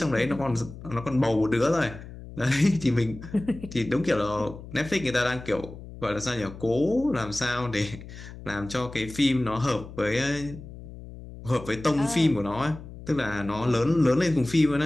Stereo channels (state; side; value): noise; left; hum, 14 dB below the sound